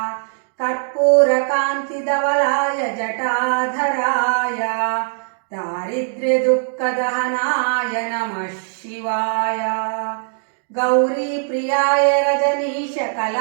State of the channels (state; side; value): silent; left; digital silence